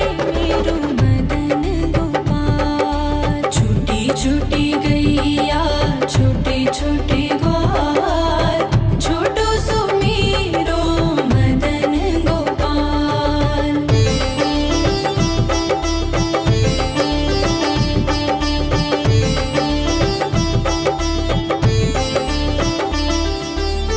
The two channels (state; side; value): identical; both; correlation 1.00